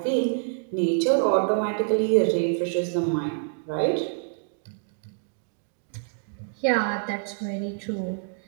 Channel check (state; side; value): silent; left; digital silence